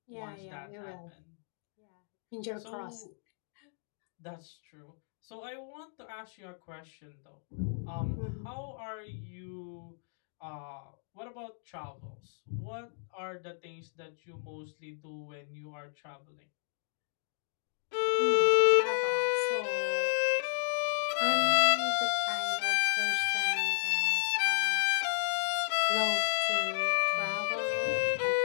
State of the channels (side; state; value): right; silent; digital silence